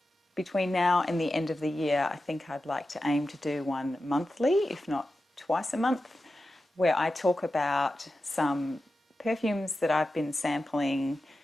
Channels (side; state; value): both; normal; correlation 0.92